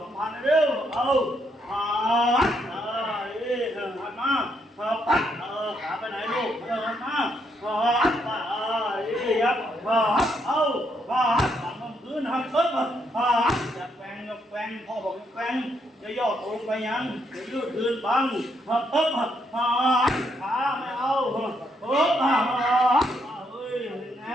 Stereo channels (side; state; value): both; normal; correlation 0.75